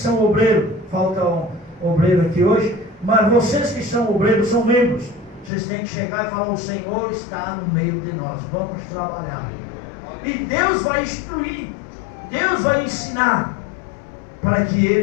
obreiros, falta um obreiro aqui hoje, mas vocês que são obreiros, são membros, vocês têm que chegar e falar, o Senhor está no meio de nós, vamos trabalhar. E Deus vai instruir, Deus vai ensinar, para que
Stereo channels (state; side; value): drops out; right; at 5.5 s